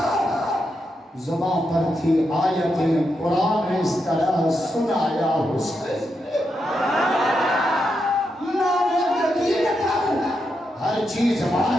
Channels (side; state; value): both; normal; correlation 0.84